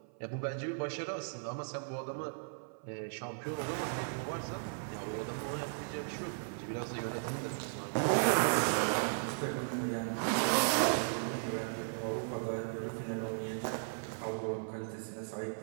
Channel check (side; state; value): left; silent; 54 dB below the other